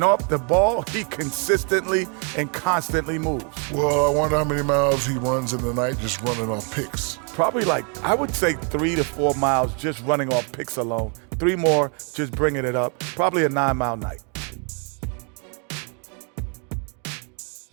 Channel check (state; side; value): quieter; left; 38.1 dB